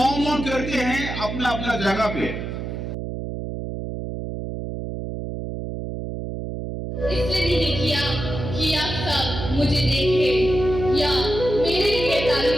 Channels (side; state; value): right; noise; hum, 6 dB below the sound